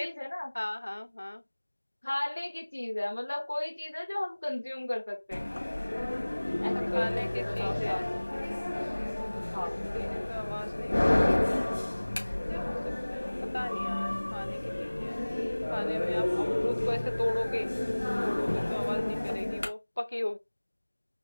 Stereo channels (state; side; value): inverted; both; correlation -1.00